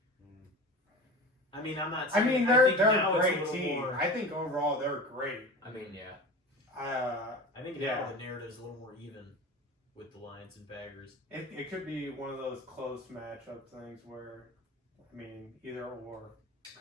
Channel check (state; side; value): normal; both; correlation 0.32